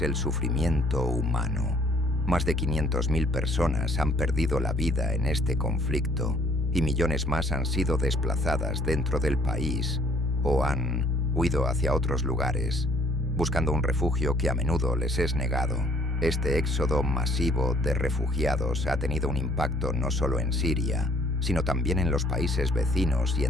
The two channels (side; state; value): both; normal; correlation 0.61